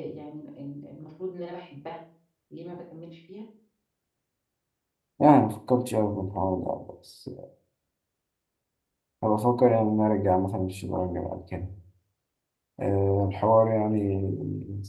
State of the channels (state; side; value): identical; both; correlation 1.00